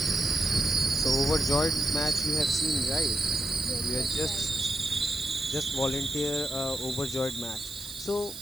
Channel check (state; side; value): noise; right; hiss, 14 dB below the sound